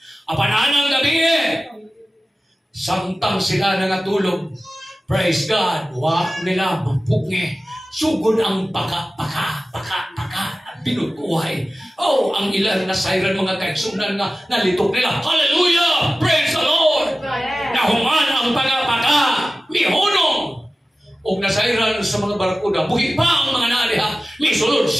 Apananang gabi samtang sila nangatulog. Praise God. Nila mapugngi. Sugod ang paka. Binutuhay. Ang ilan na sayran mga kaigsunan nga nalitok nila. Hallelujah! Praise the Lord! Nahuman ang pagapaka. Mihunong. O nasayran sa mga barakuda. Buhi pa ang mga naliha. Misulod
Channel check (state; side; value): normal; both; correlation 0.96